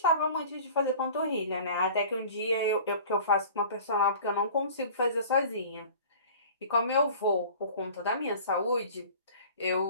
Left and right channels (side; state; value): both; inverted; correlation -0.44